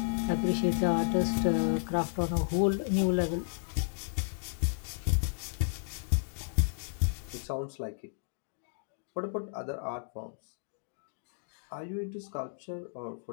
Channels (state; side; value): silent; right; digital silence